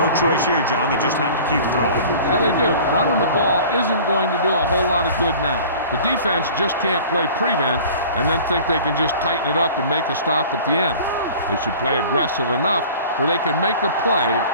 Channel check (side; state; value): both; inverted; correlation -0.43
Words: choice here, John. They just have to keep throwing. Yeah, they do. Running the ball isn't going to do a whole lot of good now. The defense just can't play prevent and then think they can just tighten it up and make a stop at the end. They should play aggressive enough where they can make a play